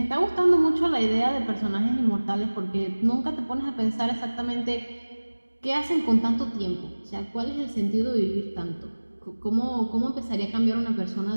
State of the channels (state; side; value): inverted; both; correlation -1.00